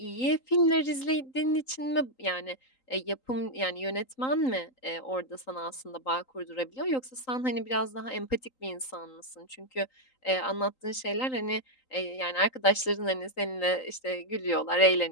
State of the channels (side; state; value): right; late; 3.8 ms